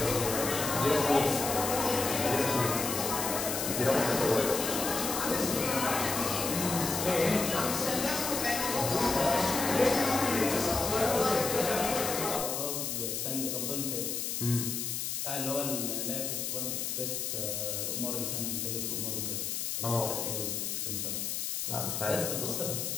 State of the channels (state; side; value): noise; left; hiss, 2 dB below the sound